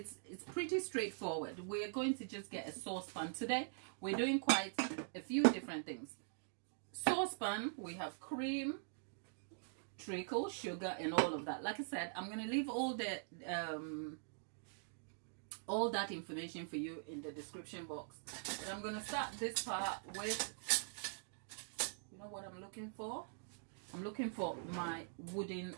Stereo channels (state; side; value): silent; left; digital silence